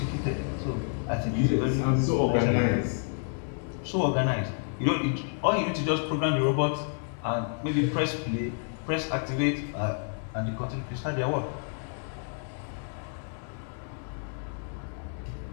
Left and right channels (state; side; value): silent; right; 58 dB below the other